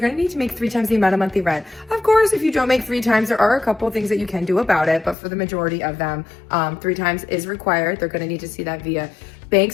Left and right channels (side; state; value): right; drops out; at 5.2 s